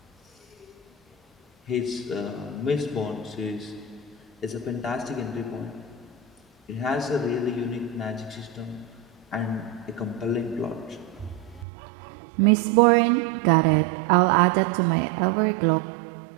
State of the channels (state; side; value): drops out; left; at 11.7 s